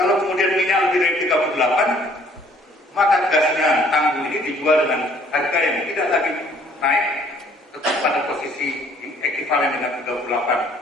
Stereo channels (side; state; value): both; normal; correlation 0.60